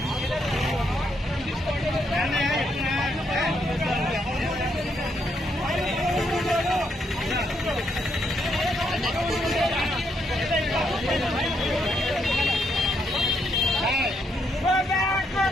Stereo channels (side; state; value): both; normal; correlation 0.76